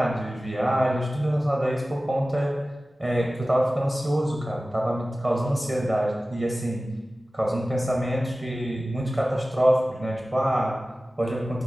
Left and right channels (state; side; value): normal; both; correlation 0.96